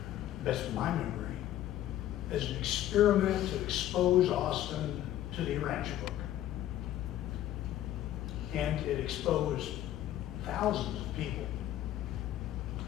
best of my memory, as an experiment to expose Austin to the Rancher book. And it exposed thousands of people.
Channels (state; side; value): quieter; right; 12.8 dB